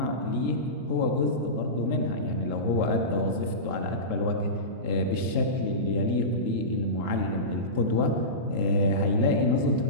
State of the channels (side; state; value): left; late; 24 ms